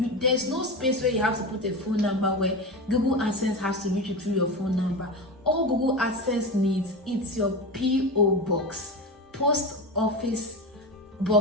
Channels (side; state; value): both; normal; correlation 0.23